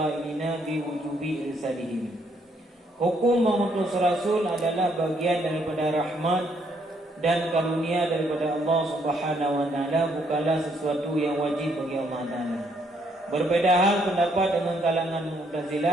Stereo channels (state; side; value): normal; both; correlation 0.71